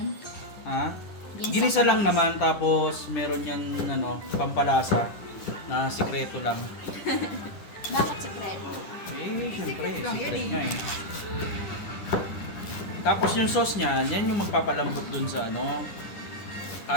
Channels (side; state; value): right; late; 10 ms